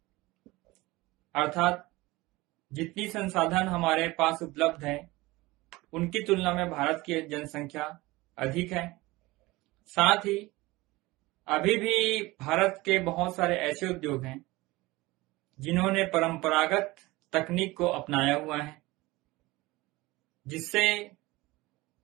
अर्थात जितनी संसाधन हमारे पास उपलब्ध है उनकी तुलना में भारत की जनसंख्या अधिक है। साथ ही अभी भी भारत के बहुत सारे ऐसे उद्योग हैं जिन्होंने परंपरागत तकनीक को अपनाया हुआ है, जिससे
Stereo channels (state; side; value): quieter; left; 20.7 dB